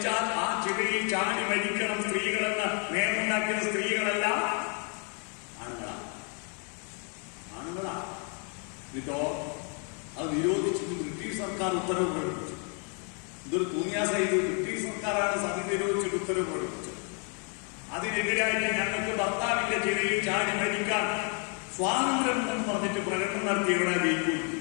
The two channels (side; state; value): right; quieter; 39.0 dB